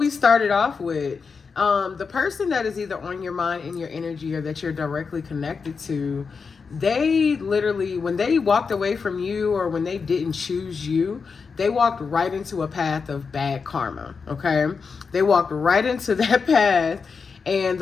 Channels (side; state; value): right; quieter; 5.3 dB